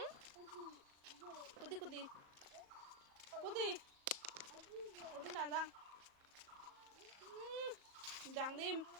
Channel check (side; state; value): left; late; 37 ms